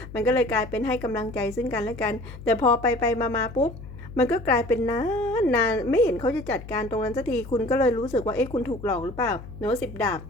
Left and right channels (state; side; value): noise; left; hum, 14 dB below the sound